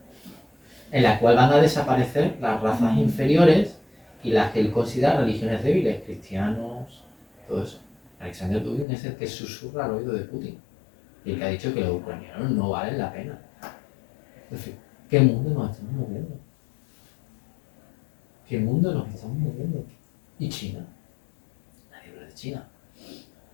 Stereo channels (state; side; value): drops out; right; at 8.8 s